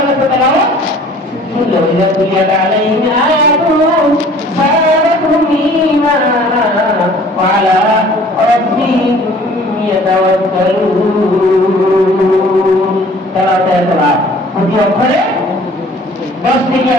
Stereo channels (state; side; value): normal; both; correlation 0.51